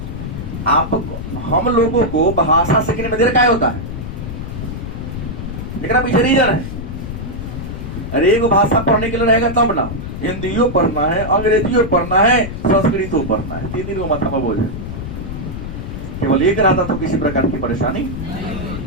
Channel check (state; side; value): noise; left; rumble, 7 dB below the sound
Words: आप हम लोगों को भाषा सीखने में देर क्या होता है, लेकिन पीछे रीजन है। अरे एक भाषा पढ़ने के लिए रहेगा तब ना, हिंदियों पढ़ना है, अंग्रेजियों पढ़ना है, संस्कृतों पढ़ना है, 3 दिन को माथा में बोझ है। केवल एक रहता तो किसी प्रकार की परेशानी।